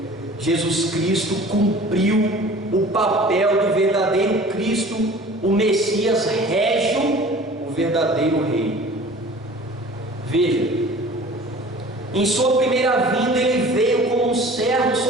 Jesus Cristo cumpriu o papel do verdadeiro Cristo, o Messias régio, o verdadeiro rei. Veja, em sua primeira vinda ele veio como um servo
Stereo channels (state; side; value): normal; both; correlation 0.45